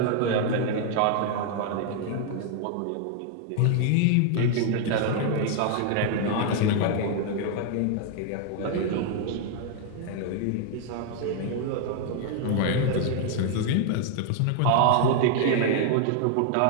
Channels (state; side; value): different; both; correlation 0.00